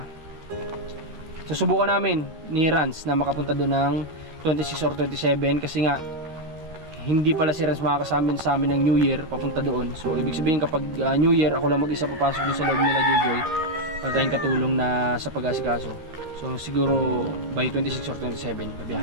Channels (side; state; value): left; late; 13 ms